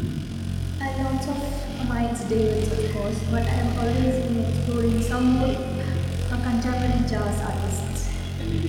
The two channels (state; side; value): identical; both; correlation 1.00